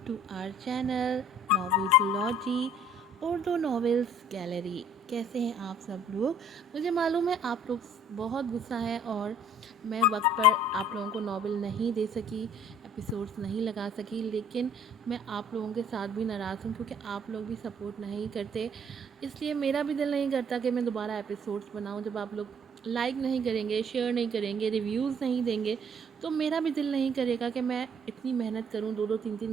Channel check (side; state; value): both; normal; correlation 0.58